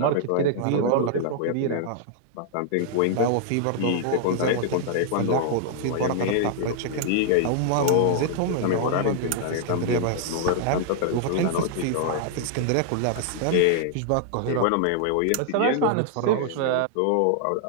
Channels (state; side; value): different; both; correlation -0.01